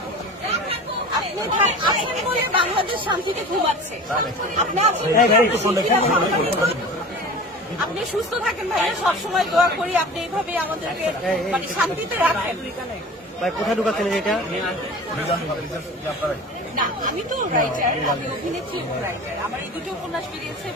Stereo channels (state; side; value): normal; both; correlation 0.37